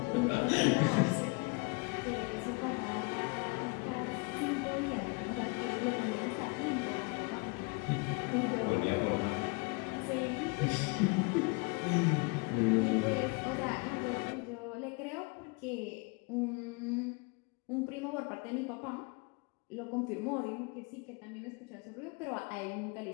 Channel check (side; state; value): right; quieter; 31.0 dB